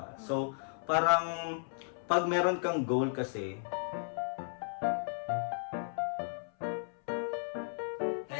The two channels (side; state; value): right; silent; 55 dB below the other